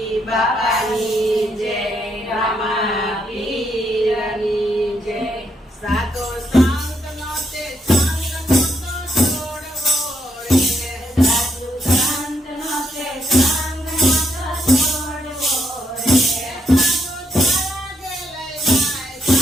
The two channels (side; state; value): both; normal; correlation 0.77